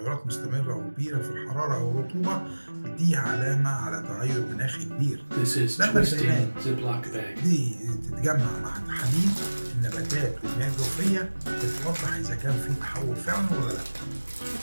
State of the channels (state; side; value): inverted; both; correlation -1.00